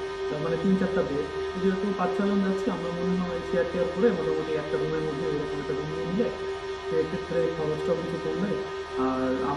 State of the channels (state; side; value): identical; both; correlation 1.00